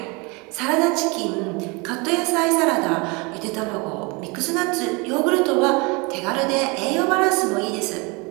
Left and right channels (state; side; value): quieter; left; 28.5 dB